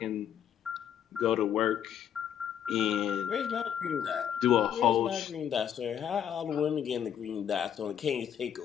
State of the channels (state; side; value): quieter; right; 9.3 dB